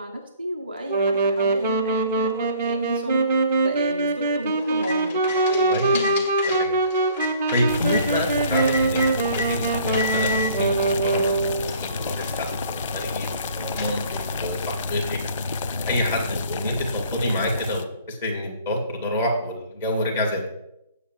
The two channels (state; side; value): inverted; both; correlation -0.55